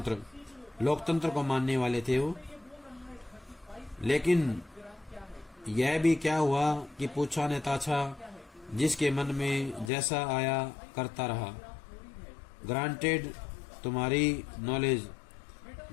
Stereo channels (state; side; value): drops out; right; at 9.9 s